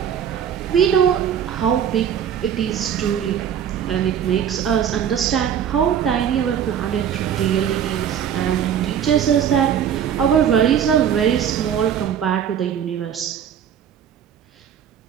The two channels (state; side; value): quieter; left; 8.9 dB